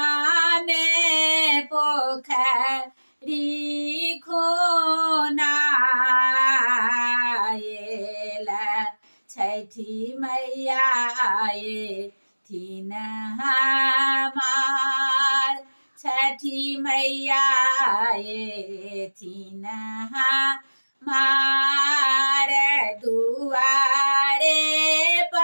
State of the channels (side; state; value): both; inverted; correlation -1.00